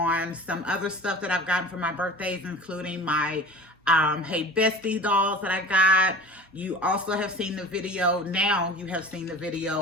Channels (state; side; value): normal; both; correlation 0.39